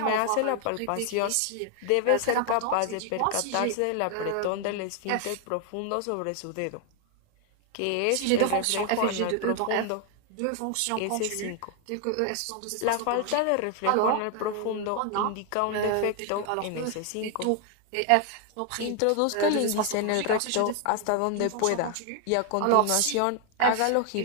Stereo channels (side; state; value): both; different; correlation 0.00